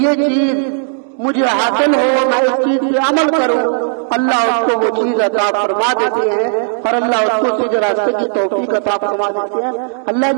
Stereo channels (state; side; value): silent; left; 64 dB below the other